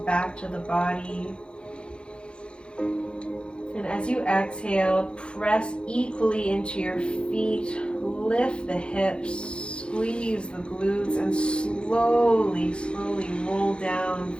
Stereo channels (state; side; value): late; right; 0.056 ms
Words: back to the body. And As you exhale, press equally into your feet, lift the hips, squeeze the glutes, and slowly roll down